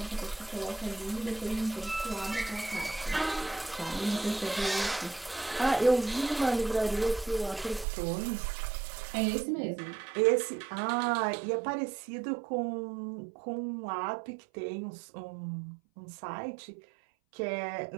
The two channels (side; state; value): left; drops out; at 7.9 s